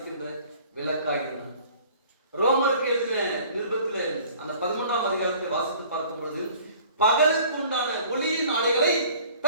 விளக்காய் இருந்தான். ரோமருக்கு எழுதின நிருபத்தில் அந்த 11ஆம் அதிகாரத்தை வாசித்து பார்க்கும் பொழுது, பகலுக்கு உண்டான ஒளியின் ஆடைகளை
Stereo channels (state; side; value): inverted; both; correlation -0.51